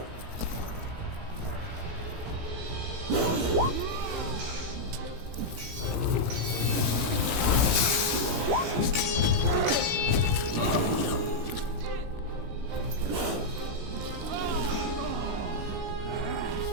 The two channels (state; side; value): late; left; 17 ms